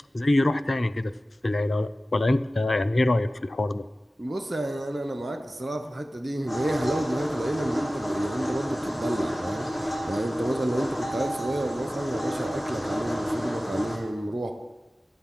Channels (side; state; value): both; normal; correlation 0.96